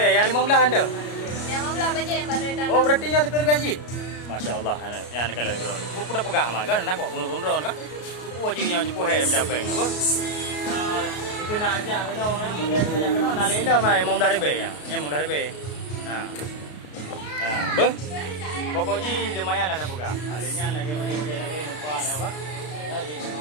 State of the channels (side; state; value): right; late; 33 ms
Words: Yang 15 anda? Yang 15 baje yang baru dah. Oh berarti yang 30 ribu haji. Masya-Allah yang nak kalau geron. Aku dah pegang mah kan nak kok rundron kan. Aku haji yang jumpa hai macam apa apa. Itu nak ajak kena orang boleh ajak kena nak lela mai 15 ribu ya. Yang 15 ribu. Nah. Bos. Pokoknya lumayan lah dah pegang. Alenya lagi macam-macam lagi nampak apa? Jadi